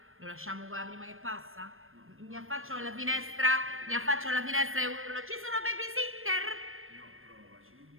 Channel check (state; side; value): late; left; 0.60 ms